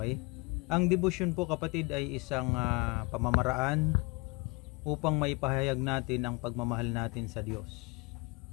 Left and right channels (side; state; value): right; quieter; 27.2 dB